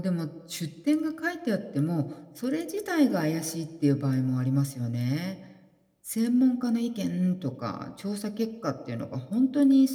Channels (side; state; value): both; identical; correlation 1.00